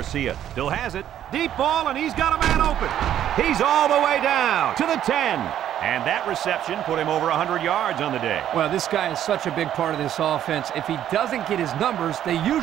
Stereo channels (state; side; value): quieter; left; 10.9 dB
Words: still has it. Deep ball, and he's got a man open. He's all the way down to the 10. And that reception put him over 100 yards on the day. Well, this guy is such a big part of this offense. If he doesn't get his numbers, they